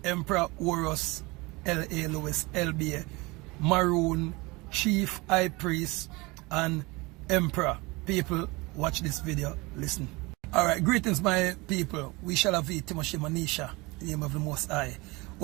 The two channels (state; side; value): quieter; left; 24.2 dB